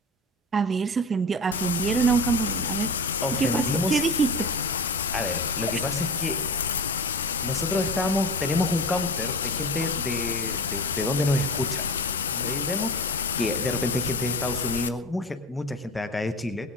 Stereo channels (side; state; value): both; normal; correlation 0.31